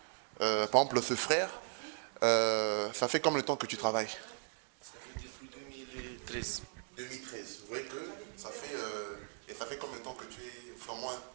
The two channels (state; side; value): silent; left; 53 dB below the other